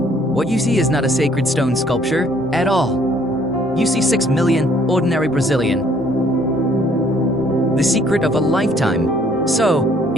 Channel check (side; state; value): both; normal; correlation 0.62